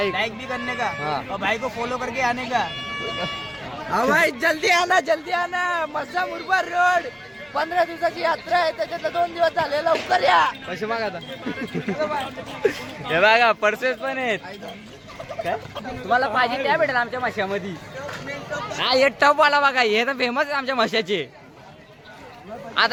भी करने का हाँ. और भाई को फॉलो करके आने का. भाई जल्दी आना मस्सा मुरबाड रोड 15 दिवसाची यात्रा आहे त्याच्यातलं 2 दिवस झाले लवकर या पैसे मागा आता हे बघा पर्सेस पण आहेत काय तुम्हाला पाहिजे त्या भेटेल आमच्या माशामध्ये हा हे टप वाला बघा हे तर फेमस आहे आमच्या माशाचे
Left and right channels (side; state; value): both; identical; correlation 1.00